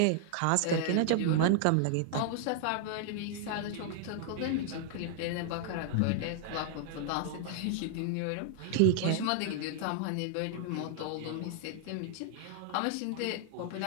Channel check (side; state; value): both; different; correlation -0.01